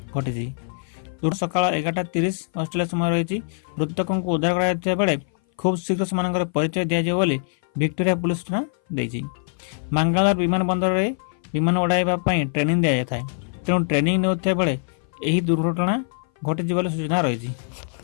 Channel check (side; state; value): right; silent; 59 dB below the other